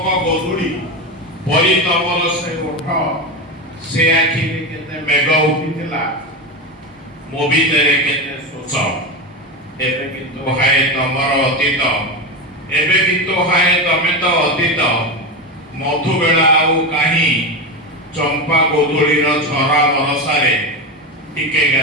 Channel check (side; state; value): both; normal; correlation 0.18